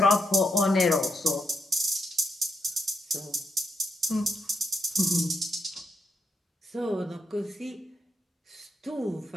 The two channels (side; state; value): both; normal; correlation 0.82